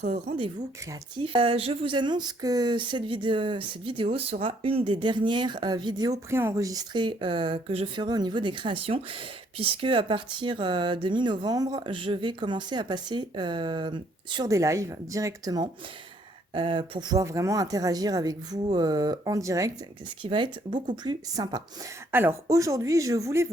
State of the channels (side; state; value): both; normal; correlation 0.66